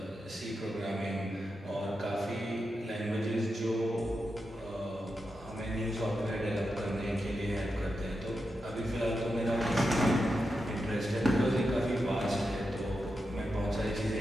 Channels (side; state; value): both; normal; correlation 0.88